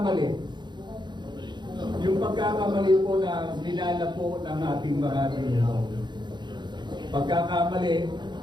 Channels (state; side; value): late; left; 0.21 ms